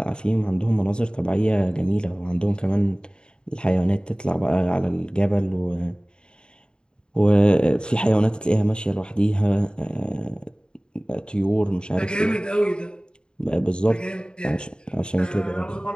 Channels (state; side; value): late; right; 0.050 ms